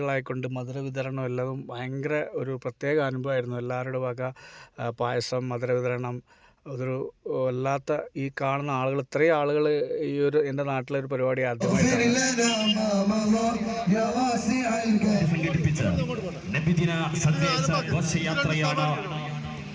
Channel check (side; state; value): both; identical; correlation 1.00